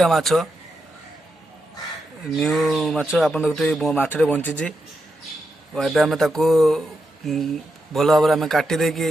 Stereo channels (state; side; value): normal; both; correlation 0.85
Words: माछ न्यू माछ आप देखते माछटे बंची एवं आम ताकू भल भाव में काटी